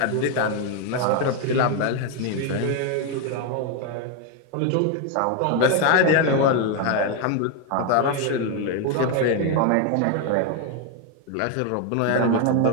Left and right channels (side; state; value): both; different; correlation 0.01